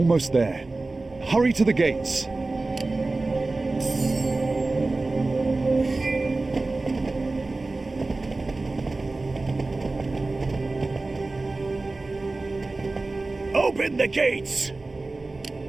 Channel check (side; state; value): left; quieter; 3.3 dB